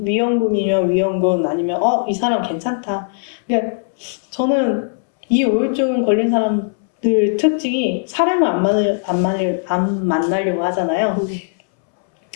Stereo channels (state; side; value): silent; right; 67 dB below the other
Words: 위험군 아니면 이 사람 괜찮다. 그러니까 저는 이 우울증 걸린 사람들 특징이 사람을 안 만나려고 하잖아요. 네.